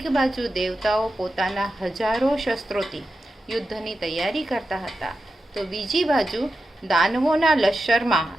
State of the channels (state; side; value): normal; both; correlation 0.90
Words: बाजू देवताओं पोताना हजारों शस्त्रोथी युद्धनी तैयारी करता हता, तो बीजी बाजू दानवोना लश्कर